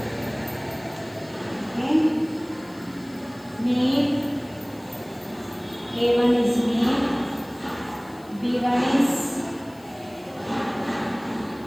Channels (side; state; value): left; noise; hiss, 26 dB below the sound